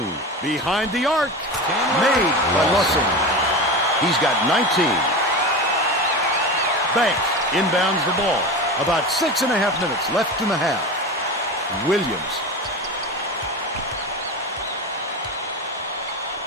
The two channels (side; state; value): both; normal; correlation 0.26